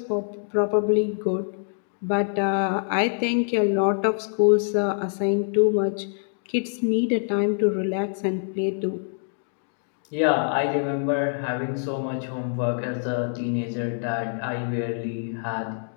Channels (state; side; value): silent; right; digital silence